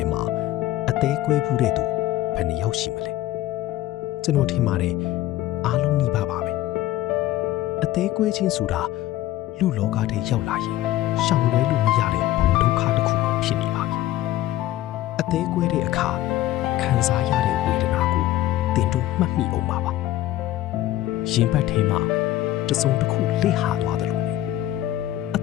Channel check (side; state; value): right; quieter; 14.7 dB